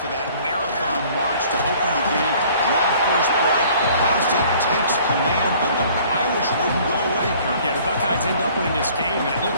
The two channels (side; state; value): both; inverted; correlation -0.54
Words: to that marathon march to open the game, draw first blood. Ohio State takes command, but the Irish wouldn't go away, Kirk. Yeah, the Buckeyes end up winning this game, and it